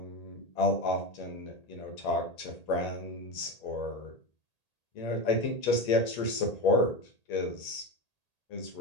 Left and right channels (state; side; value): late; right; 1.8 ms